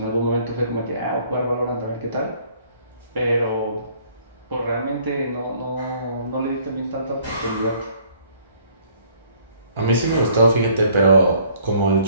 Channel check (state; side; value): inverted; both; correlation -0.60